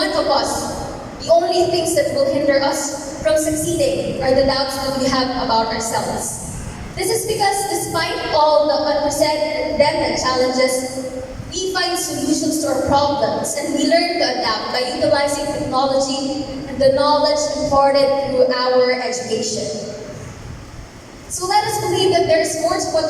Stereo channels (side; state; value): both; identical; correlation 1.00